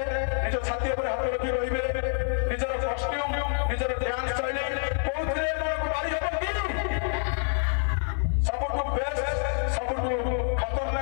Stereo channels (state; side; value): silent; right; 60 dB below the other